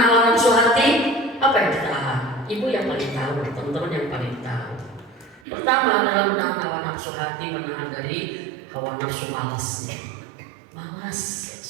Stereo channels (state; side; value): drops out; left; at 5.4 s